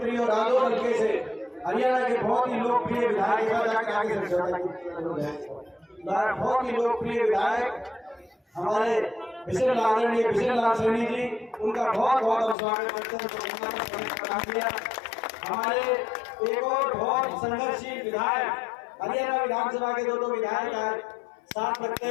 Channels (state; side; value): drops out; right; at 12.6 s